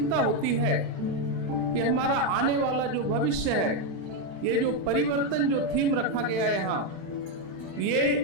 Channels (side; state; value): left; late; 36 ms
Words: होती है कि हमारा आने वाला जो भविष्य है, ये जो परिवर्तन जो थीम रखा गया है यहाँ, ये